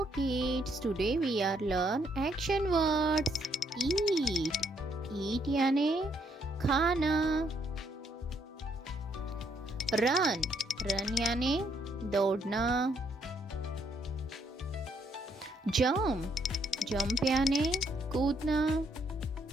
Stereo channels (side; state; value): both; normal; correlation 0.72